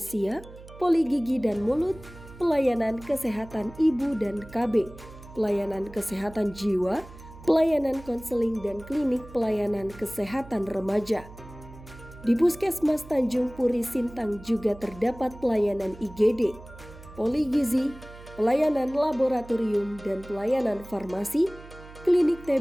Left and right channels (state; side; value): noise; right; hum, 18 dB below the sound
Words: poli gigi dan mulut, pelayanan kesehatan ibu dan KB, pelayanan kesehatan jiwa, pelayanan konseling dan klinik pelayanan kesehatan remaja. Di Puskesmas Tanjung Puri Sintang juga terdapat pelayanan IGD, poligizi, pelayanan laboratorium dan pelayanan farmasi, klinik